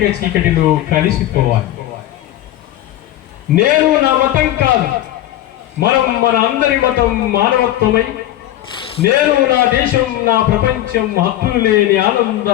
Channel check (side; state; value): right; quieter; 13.7 dB